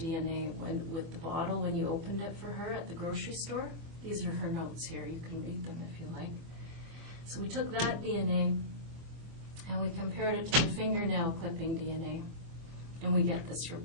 with the bottle when you opened it for her at the grocery store. These are her notes here. You can read them if you like. So we took that DNA and we compared it to the fingernail clipping DNA. And we get this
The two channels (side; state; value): left; late; 24 ms